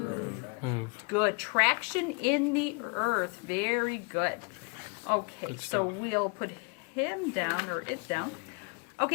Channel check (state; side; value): quieter; right; 33.6 dB